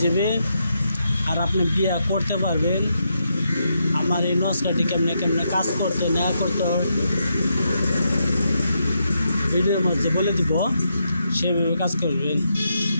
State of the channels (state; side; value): inverted; both; correlation -0.81